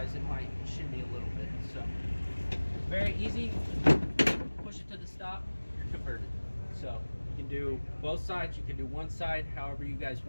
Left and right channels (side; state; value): both; inverted; correlation -1.00